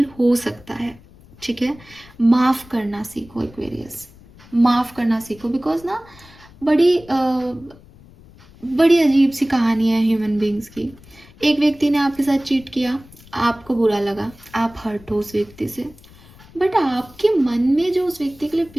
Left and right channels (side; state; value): left; noise; rumble, 24 dB below the sound